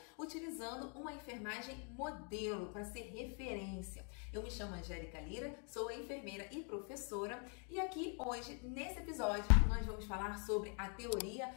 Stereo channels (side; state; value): right; quieter; 39.3 dB